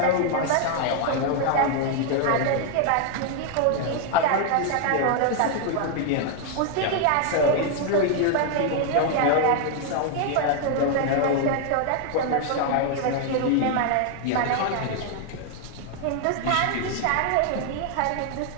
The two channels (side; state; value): both; different; correlation 0.00